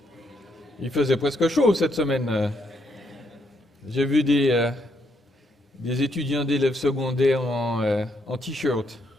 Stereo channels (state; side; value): normal; both; correlation 0.75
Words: Il faisait presque chaud cette semaine. J'ai vu des étudiants d'élèves secondaires en t-shirt,